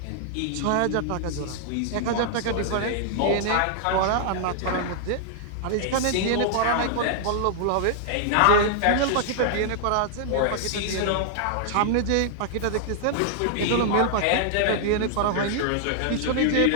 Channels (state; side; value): different; both; correlation -0.01